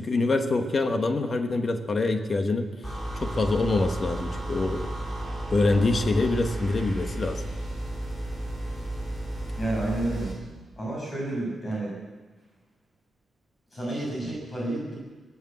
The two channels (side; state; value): both; normal; correlation 0.89